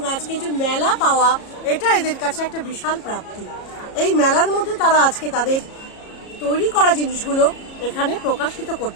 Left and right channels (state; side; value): late; right; 34 ms